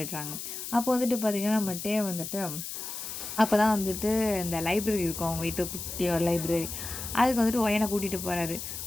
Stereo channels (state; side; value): noise; left; hiss, 7 dB below the sound